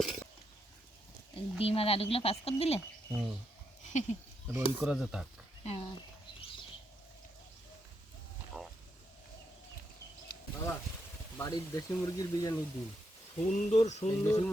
ডিম আর আলুগুলো পাস করে দিলে। রোল করা যে থাক। হ্যাঁ, বাবা বাড়ির দেশি মুরগির বিরিয়ানির ডিম, সুন্দর সুন্দর দেশি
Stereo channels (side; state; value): both; normal; correlation 0.81